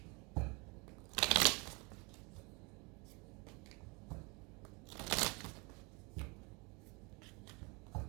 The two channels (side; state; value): left; quieter; 29.1 dB